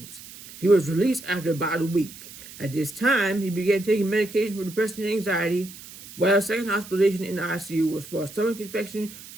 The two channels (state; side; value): noise; right; hiss, 16 dB below the sound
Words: He was released after about a week. At this time, he began taking medication for depression and anxiety, while his second hospitalization in the ICU was for a stomach infection